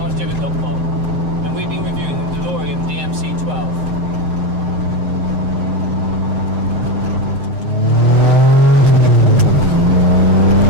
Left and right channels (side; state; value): left; late; 7.9 ms